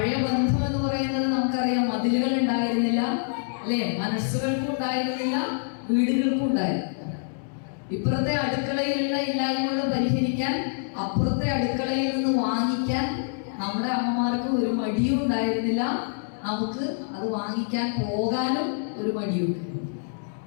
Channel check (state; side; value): silent; right; digital silence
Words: ബന്ധം എന്ന് പറയുന്നത് നമുക്കറിയാം, മതിലുകൾ ഉണ്ടായിരുന്നില്ല അല്ലെ, മനസ്സുകൾക്കും ഉണ്ടായിരുന്നില്ല, വീടുകൾക്കും ഉണ്ടായിരുന്നില്ല. ഇപ്പുറത്തെ അടുക്കളയിലുള്ള ഇല്ലായ്മകൾ പരിഹരിക്കാൻ അപ്പുറത്തെ അടുക്കളയിൽ നിന്ന് വാങ്ങിക്കാൻ നമ്മുടെ അമ്മമാർക്ക് ഒരു മടിയും ഉണ്ടായിരുന്നില്ല. നമുക്ക് അത് വാങ്ങിക്കാൻ പോകാനും ഒരു മടിയുണ്ട്